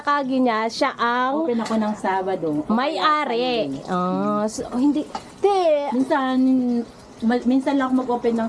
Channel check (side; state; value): both; identical; correlation 1.00